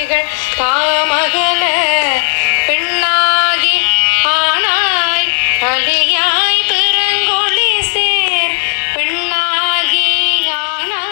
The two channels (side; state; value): right; silent; digital silence